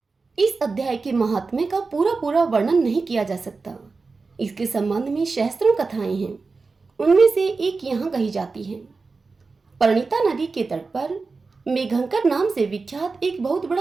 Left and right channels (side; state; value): left; quieter; 4.2 dB